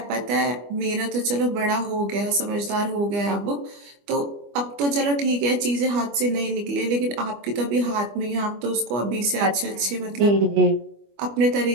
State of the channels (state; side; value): late; left; 25 ms